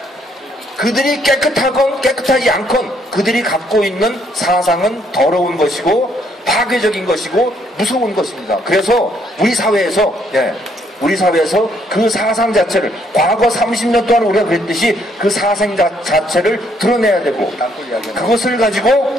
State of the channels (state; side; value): normal; both; correlation 0.69